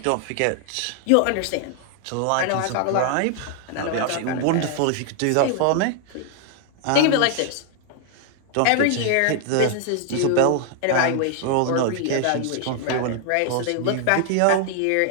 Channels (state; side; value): different; both; correlation 0.00